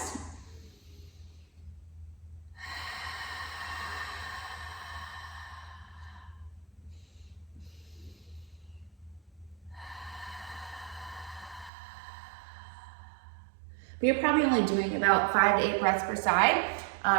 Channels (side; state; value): left; drops out; at 11.7 s